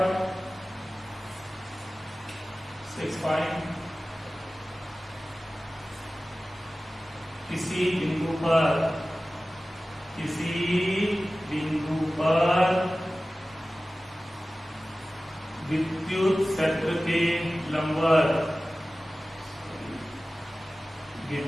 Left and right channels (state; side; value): normal; both; correlation 0.96